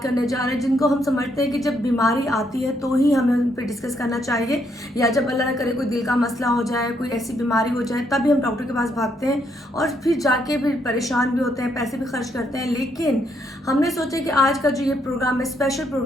करने जा रहे हैं जिनको हम समझते हैं कि जब बीमारी आती है तो ही हमें उन पे डिस्कस करना चाहिए, या जब अल्लाह ना करे कोई दिल का मसला हो जाए, कोई ऐसी बीमारी हो जाए, तभी हम डॉक्टर के पास भागते हैं और फिर जाके फिर परेशान भी होते हैं, पैसे भी खर्च करते हैं। लेकिन हमने सोचा कि आज का जो ये प्रोग्राम है, स्पेशल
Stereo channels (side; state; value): both; normal; correlation 0.74